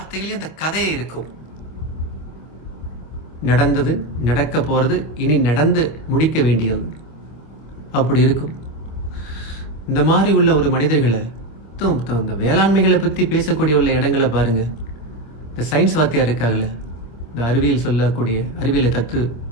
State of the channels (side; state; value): right; late; 26 ms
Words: அந்த கதையே இருக்கும். நடந்தது, நடக்க போறது, இனி நடந்து முடிக்க வேண்டியது, அப்படி இருக்கும். இந்த மாதிரி உள்ள ஒரு மனிதர்களை, இந்த வேளாண்மைகளை பத்தி பேசக்கூடிய உள்ள இடங்களை பாருங்க. இந்த சயின்ஸ் வாத்தியார் இருக்காங்கல்ல, இந்த அறிவியல் சொல்லக்கூடிய அறிவியலை